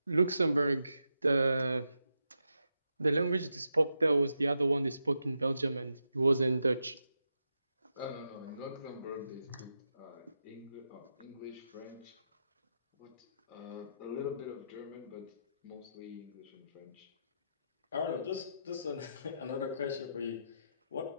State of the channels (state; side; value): inverted; both; correlation -0.85